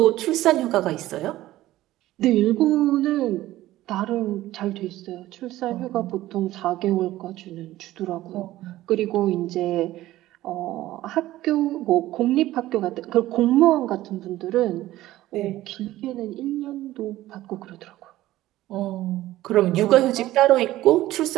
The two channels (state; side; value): quieter; left; 15.5 dB